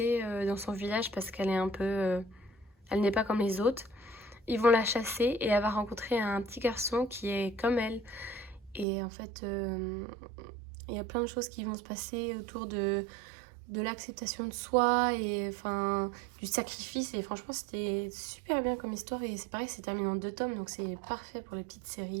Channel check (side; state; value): left; drops out; at 8.8 s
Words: dans son village parce qu'elle est un peu... elle n'est pas comme les autres. Ils vont la chasser et elle va rencontrer un petit garçon qui est comme elle. Et en fait, il y a plein de choses qui vont se passer autour de l'acceptation de soi et enfin du sacrifice. Et franchement, c'était super bien comme histoire. Et c'est pareil, c'est terminé en 2 tomes, donc c'est parfait pour les petites